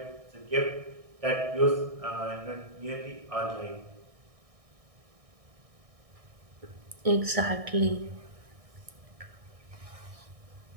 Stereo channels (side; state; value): left; late; 1.6 ms